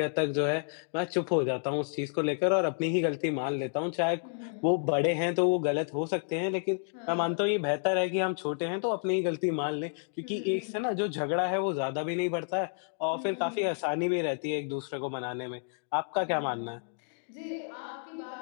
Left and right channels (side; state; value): right; silent; 57 dB below the other